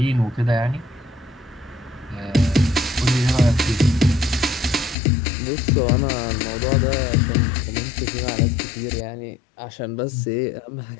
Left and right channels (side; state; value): right; drops out; at 5.0 s